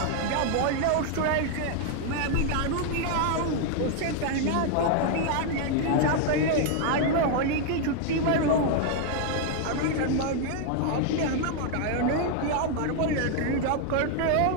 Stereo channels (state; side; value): different; both; correlation 0.00